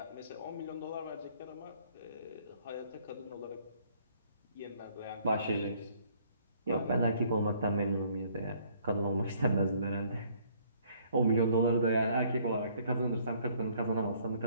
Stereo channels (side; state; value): both; inverted; correlation -0.62